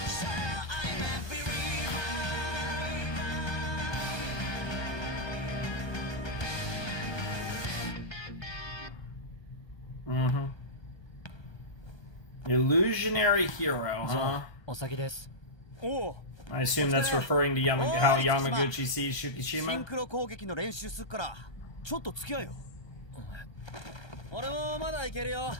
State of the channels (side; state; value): right; late; 1.3 ms